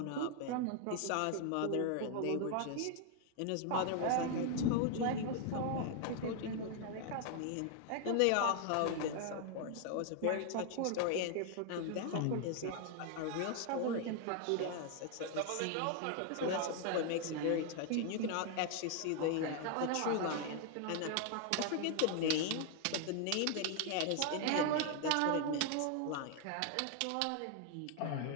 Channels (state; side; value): different; both; correlation 0.00